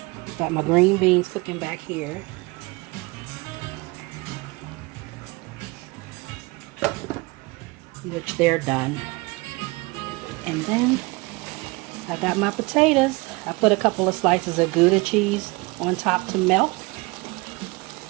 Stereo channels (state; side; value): quieter; left; 24.9 dB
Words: Got my green beans cooking back here. Which they're done. And then I got my potatoes. I put a couple of slices of Gouda cheese on top to melt.